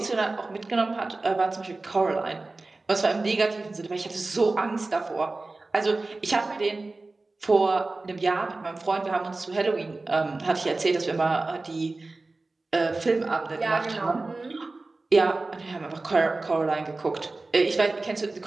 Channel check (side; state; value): left; quieter; 3.3 dB